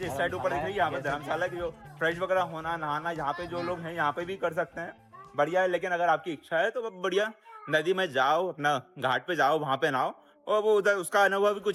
इस साइड ऊपर दिख रही है, यहाँ पे धर्मशाला की जो फ्रेश वगैरह होना नहाना यहाँ पे जो लोग हैं यहाँ पे भी कर सकते हैं, बढ़िया है। लेकिन अगर आपकी इच्छा है तो बढ़िया नदी में जाओ, अपना घाट पे जाओ, वहाँ पे नहाओ, और वो उधर उसका अनुभव भी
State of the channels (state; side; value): identical; both; correlation 1.00